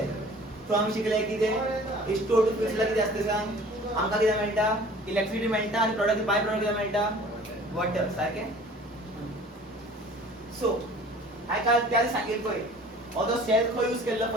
So आम्ही शिकले की ते H2O2 फ्यूल सेल किती असते सांग आमका किती मिळता इलेक्ट्रिसिटी मिळता आणि प्रोडक्ट बाय प्रोडक्ट किती मिळता वॉटर सारखे. सो हाय काय त्याला सांगितलोय ऑदो सेल खो यूज केलं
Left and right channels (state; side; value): normal; both; correlation 0.47